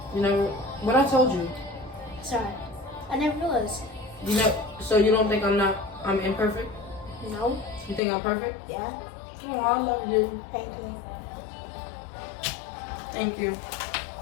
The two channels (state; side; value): drops out; right; at 8.0 s